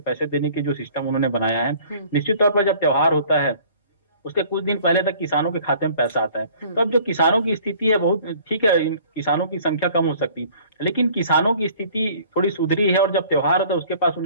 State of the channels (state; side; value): inverted; both; correlation -0.52